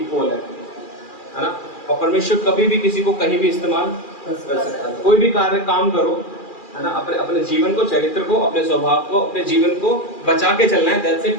है ना। और परमेश्वर कभी भी किसी को कहीं भी इस्तेमाल कर सकता है। कोई भी कार्य काम करो, है ना, अपने जीवन को, चरित्र को, अपने स्वभाव को, अपने जीवन को बचा के चलना है, दैट्स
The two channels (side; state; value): right; late; 2.4 ms